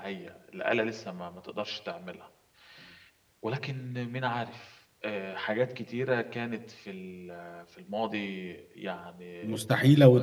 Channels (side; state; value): both; identical; correlation 1.00